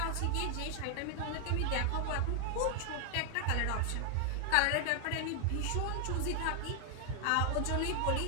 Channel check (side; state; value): both; different; correlation 0.00